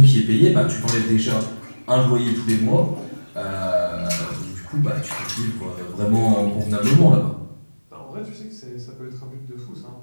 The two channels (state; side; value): inverted; both; correlation -1.00